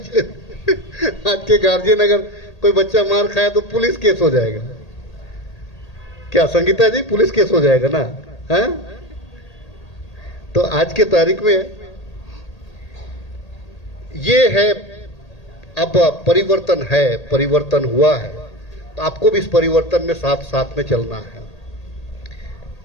आज के गार्जियन अगर कोई बच्चा मार खाए तो पुलिस केस हो जाएगा। क्या संगीता जी, पुलिस केस हो जाएगा ना? है? तो आज के तारीख में ये है, अब परिवर्तन है, परिवर्तन हुआ है, तो आपको भी इस परिवर्तन में साथ साथ में चलना है।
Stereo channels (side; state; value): right; late; 1.8 ms